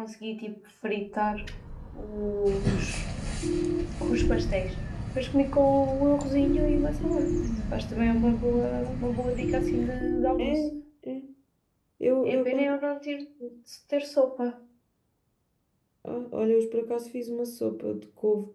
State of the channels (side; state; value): both; identical; correlation 1.00